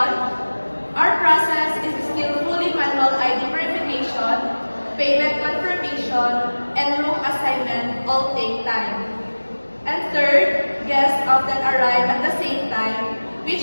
our process is still fully manual ID verification, payment confirmation, and room assignment all take time. And third, guests often arrive at the same time,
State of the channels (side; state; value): both; inverted; correlation -1.00